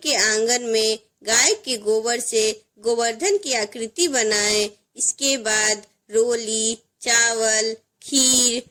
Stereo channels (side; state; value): both; identical; correlation 1.00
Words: आंगन में गाय के गोबर से गोवर्धन की आकृति बनाएं। इसके बाद रोली, चावल, खीर,